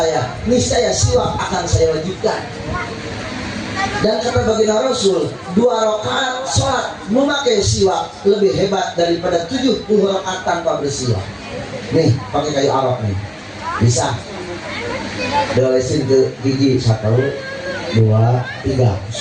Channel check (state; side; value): identical; both; correlation 1.00